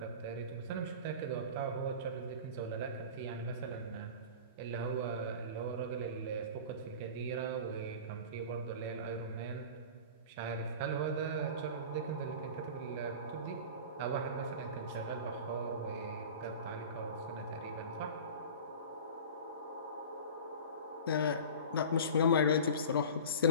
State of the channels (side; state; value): both; inverted; correlation -0.36